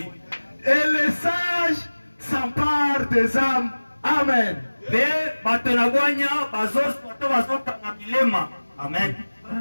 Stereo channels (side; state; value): both; inverted; correlation -1.00